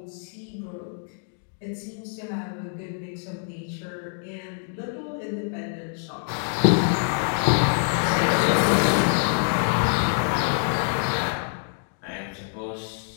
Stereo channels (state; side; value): silent; right; 61 dB below the other